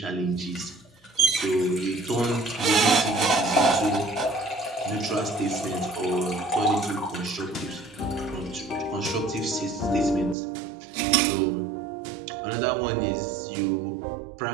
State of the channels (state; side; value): drops out; left; at 10.4 s